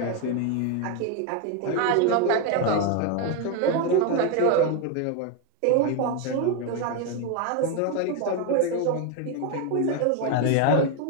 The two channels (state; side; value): different; both; correlation 0.02